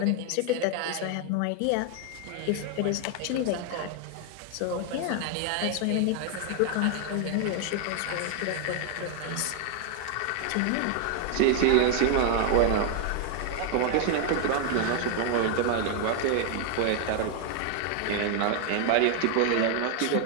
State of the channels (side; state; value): both; different; correlation 0.01